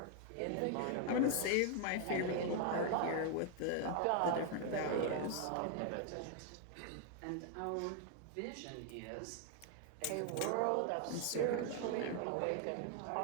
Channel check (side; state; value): both; different; correlation 0.00